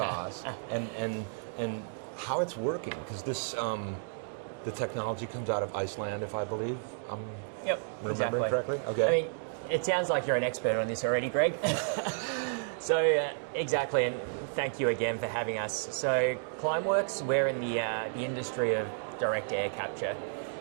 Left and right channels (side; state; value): left; silent; digital silence